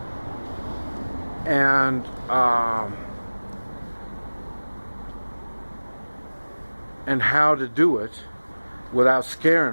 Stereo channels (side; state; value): both; inverted; correlation -1.00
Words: and how to do it without